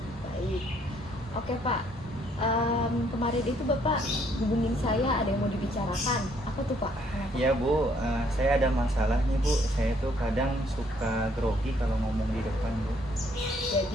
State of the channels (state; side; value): normal; both; correlation 0.66